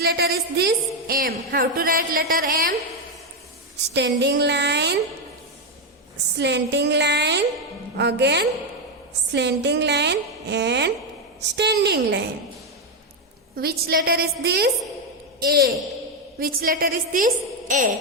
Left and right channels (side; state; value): both; normal; correlation 0.05